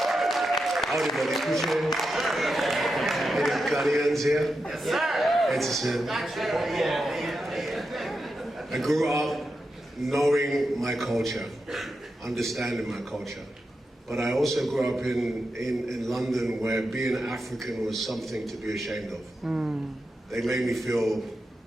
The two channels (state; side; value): normal; both; correlation 0.88